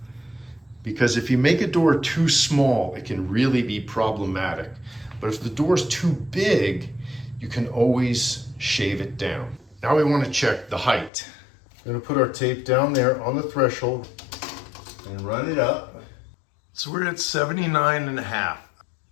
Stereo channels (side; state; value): right; drops out; at 11.1 s